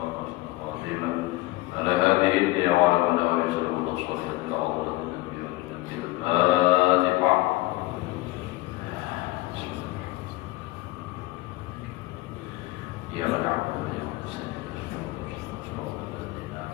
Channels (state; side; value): quieter; right; 19.9 dB